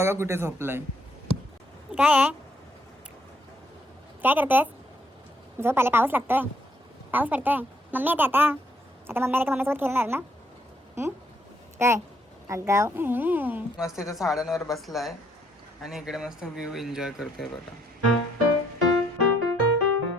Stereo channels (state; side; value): normal; both; correlation 0.70